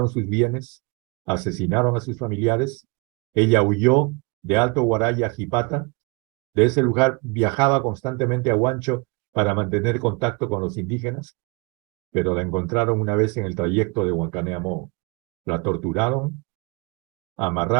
sus bienes, asesinaron a sus familiares. Ella huyó de Alto Guaraya a Jipata. De ese lugar viajaba constantemente a Huancho para mantener contacto con los indígenas, pero la encontraron una vez en el trayecto de Huancané a Moo. La torturaron, la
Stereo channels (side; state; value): left; quieter; 30.2 dB